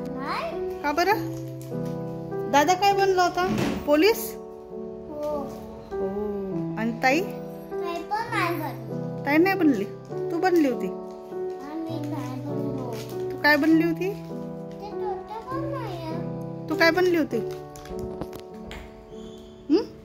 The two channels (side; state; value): both; identical; correlation 1.00